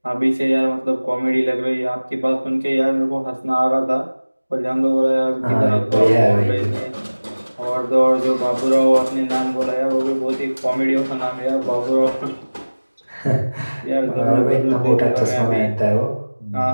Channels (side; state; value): both; inverted; correlation -1.00